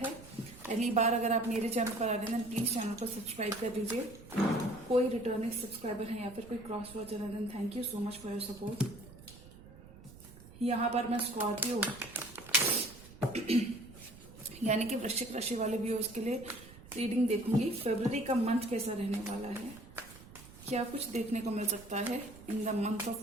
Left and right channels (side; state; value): right; noise; rumble, 19 dB below the sound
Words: है। पहली बार अगर आप मेरे चैनल पर आ रहे हैं प्लीज चैनल को सब्सक्राइब कर लीजिए। कोई रिटर्निंग सब्सक्राइबर है या फिर कोई क्रॉस वॉचर है, then thank you so much for your support. यहाँ पर मैं स्कॉर्पियो यानी कि वृश्चिक राशि वाले व्यूअर्स के लिए रीडिंग देखूंगी। फरवरी का मंथ कैसा रहने वाला है, क्या कुछ देखने को मिल सकता है इन the month of